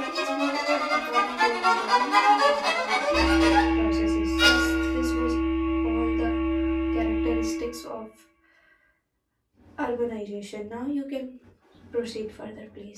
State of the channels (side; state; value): both; identical; correlation 1.00